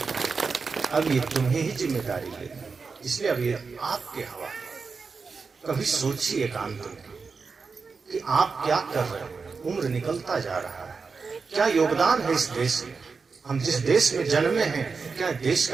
अब ये तुम्हें ही जिम्मेदारी लेनी, इसलिए अब ये आपके हवाले। कभी सोचिए एकांत में कि आप क्या कर रहे हैं। उम्र निकलता जा रहा है, क्या योगदान है इस देश में? हम जिस देश में जन्मे हैं, क्या देश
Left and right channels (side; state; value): left; quieter; 4.9 dB